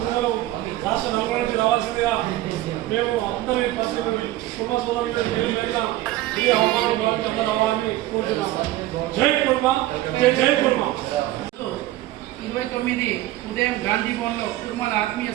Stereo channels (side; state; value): left; quieter; 15.7 dB